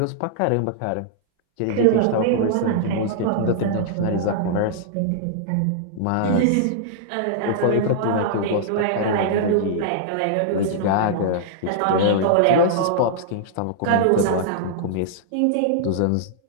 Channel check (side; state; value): both; different; correlation -0.02